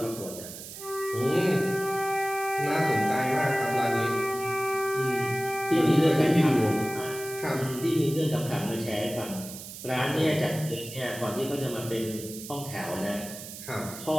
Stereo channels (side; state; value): right; noise; hiss, 12 dB below the sound